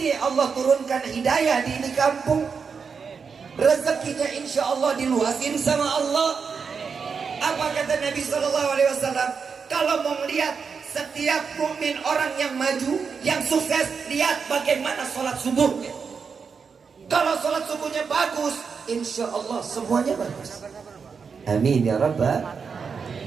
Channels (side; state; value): left; quieter; 5.7 dB